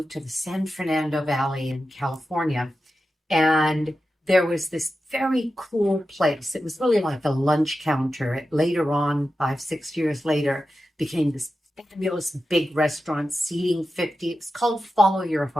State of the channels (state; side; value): normal; both; correlation 0.91